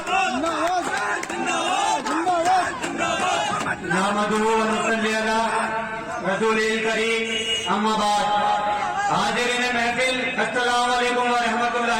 हाजिरीन महफिल अस्सलाम वालेकुम व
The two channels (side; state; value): both; identical; correlation 1.00